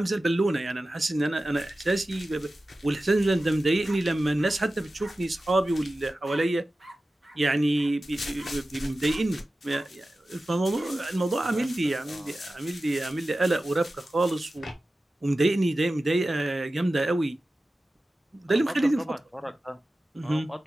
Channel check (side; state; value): both; normal; correlation 0.95